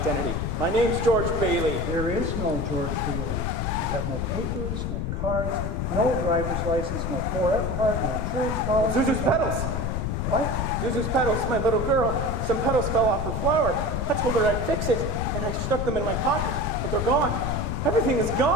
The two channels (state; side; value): noise; left; rumble, 1 dB below the sound